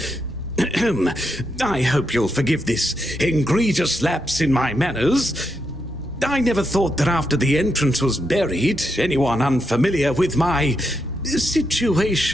I hope you'll forgive this egregious lapse in my manners. I never thought that after the entrance was buried, anyone unfamiliar with my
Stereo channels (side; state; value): both; normal; correlation 0.81